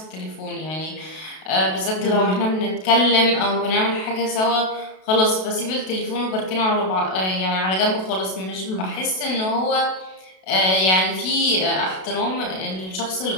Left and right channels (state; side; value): late; right; 32 ms